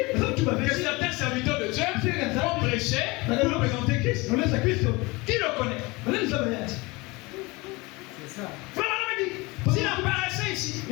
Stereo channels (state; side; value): quieter; right; 24.2 dB